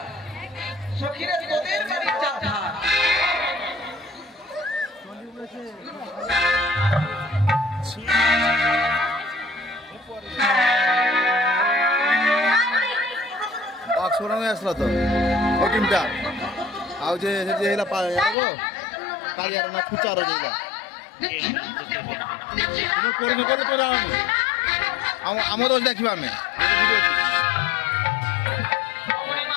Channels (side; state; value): right; drops out; at 18.4 s